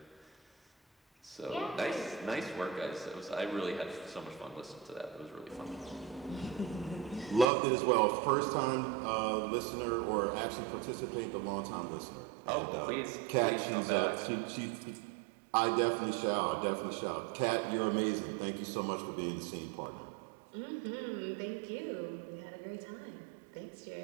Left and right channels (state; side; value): drops out; left; at 7.5 s